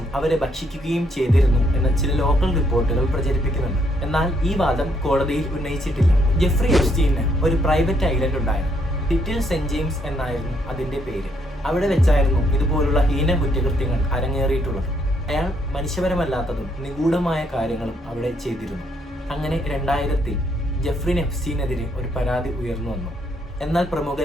അവരെ ഭക്ഷിക്കുകയും ചെയ്തിരുന്നു എന്ന ചില ലോക്കൽ റിപ്പോർട്ടുകൾ പ്രചരിപ്പിക്കുന്നുണ്ട്. എന്നാൽ ഈ വാദം കോടതിയിൽ ഉന്നയിച്ചിട്ടില്ല. ജെഫ്രി എപ്സ്റ്റീന് ഒരു പ്രൈവറ്റ് ഐലൻഡ് ഉണ്ടായിരുന്നു. ലിറ്റിൽ സെന്റ് ജെയിംസ് എന്നായിരുന്നു അതിന്റെ പേര്. അവിടെ വെച്ചായിരുന്നു ഇതുപോലുള്ള ഹീന കുറ്റകൃത്യങ്ങൾ അരങ്ങേറിയിട്ടുള്ളത്. അയാൾ മനുഷ്യപരമല്ലാത്തതും നിഗൂഢമായ കാര്യങ്ങളും അവിടെ ചെയ്തിരുന്നു. അങ്ങനെ 2000-ൽ ജെഫ്രി എപ്സ്റ്റീനെതിരെ ഒരു പരാതി ഉയർന്നു വന്നു. എന്നാൽ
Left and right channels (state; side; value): normal; both; correlation 0.72